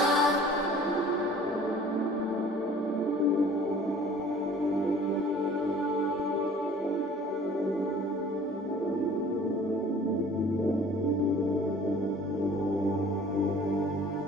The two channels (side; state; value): both; normal; correlation 0.49